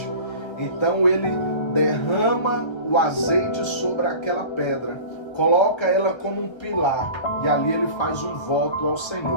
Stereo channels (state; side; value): late; right; 1.3 ms